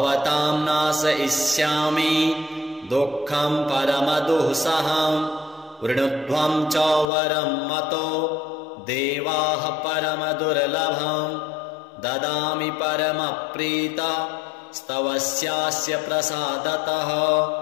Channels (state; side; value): drops out; right; at 7.1 s